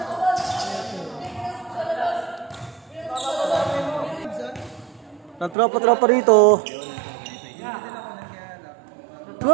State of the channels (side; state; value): left; drops out; at 5.6 s